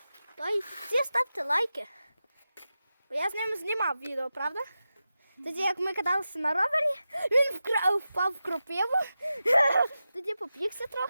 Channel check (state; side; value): inverted; both; correlation -0.92